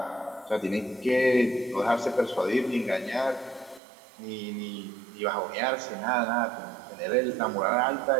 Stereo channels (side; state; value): left; drops out; at 3.8 s